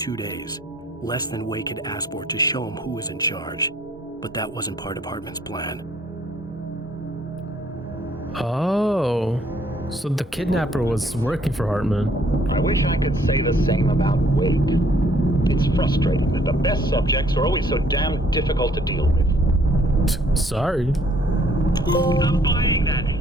days, less than Wake had asked for to show him who was in charge. But that wasn't part of Hartman's plan. Oh, so the kidnapper was working for Hartman. I wish I could say the same about Wake. It's frustrating that the best subjects are always so damn difficult to deal with. Sorry. I'm buying that.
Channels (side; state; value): both; normal; correlation 0.63